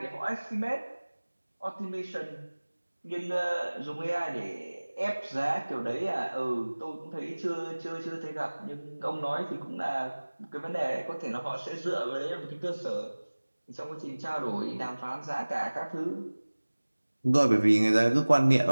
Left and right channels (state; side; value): inverted; both; correlation -1.00